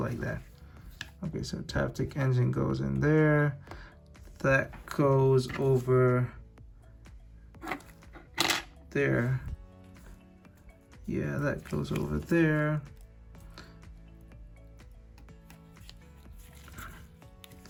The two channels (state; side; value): identical; both; correlation 1.00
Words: that. Okay, so Taptic engine goes in there. That goes over there. Yeah, that goes over there.